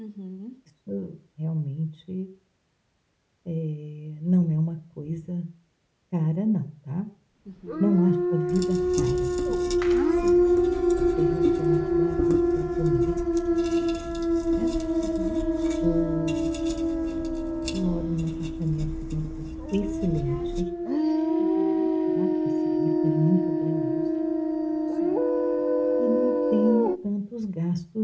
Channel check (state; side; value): identical; both; correlation 1.00